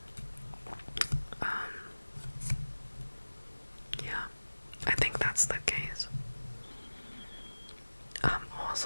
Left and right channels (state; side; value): inverted; both; correlation -1.00